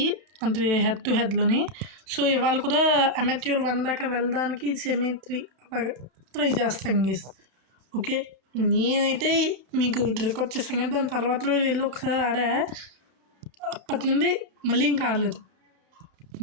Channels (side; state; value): left; late; 31 ms